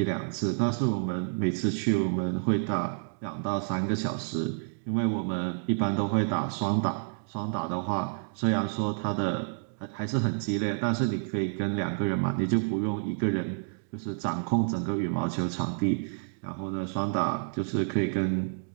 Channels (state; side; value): silent; left; digital silence